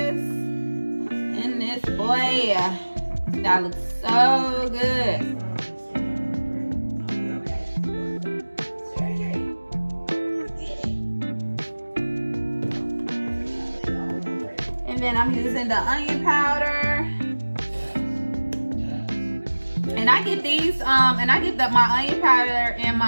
And this boy, that looks so good. Then I'm using the onion powder, and I get these and I get my onion powder and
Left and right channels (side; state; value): both; inverted; correlation -1.00